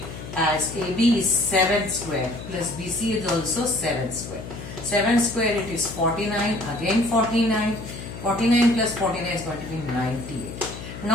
as AB is 7 square plus BC is also 7 square. 7 square it is 49, again 49. 49 plus 49 is going to be 98.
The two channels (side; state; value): left; noise; hum, 11 dB below the sound